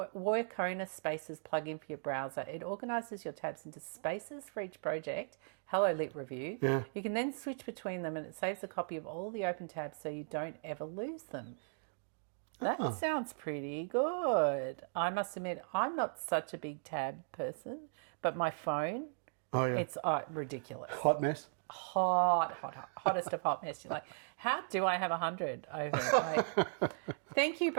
Spaces plugin for your browser. It organises your tabs into spaces for each project. Hello, Lit Review. Yeah. You can then switch between them and it saves a copy of all the open tabs so you don't ever lose them. That sounds pretty good. I must admit, I'm not such a big tab person, but my phone, it's ridiculous. Hot mess. Hottest of hot mess. You're like, how do I have 100 over it? Thank you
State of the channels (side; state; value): left; silent; digital silence